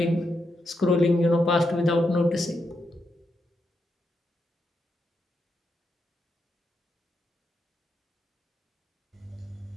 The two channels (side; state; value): both; normal; correlation 0.83